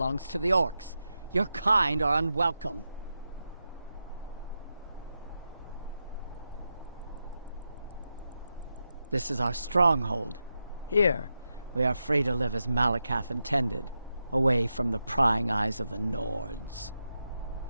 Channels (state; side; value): inverted; both; correlation -0.88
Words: to the orcs. Your kind are unwelcome. This is our stronghold. Here, we are free to live as Malakath intended, away from the prying eyes of the Nords.